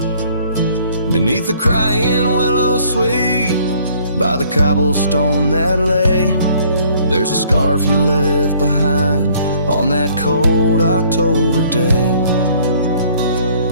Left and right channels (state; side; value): inverted; both; correlation -0.60